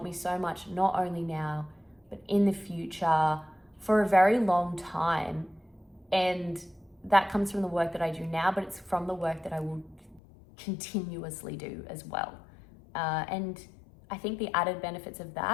me so much, not only now but in the future, for a very long time. And that comes from the work that I do now, but it's from the work that I will continuously do as well. And I think the added benefits of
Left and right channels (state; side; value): drops out; right; at 10.2 s